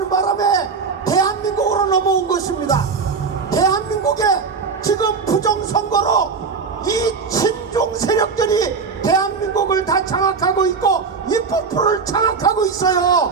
바람에 대한민국으로 넘어온 것입니다. 대한민국에 지금 부정선거로 이 친중 세력들이 대한민국을 다 장악하고 있고 입법부를 장악하고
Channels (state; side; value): quieter; left; 5.2 dB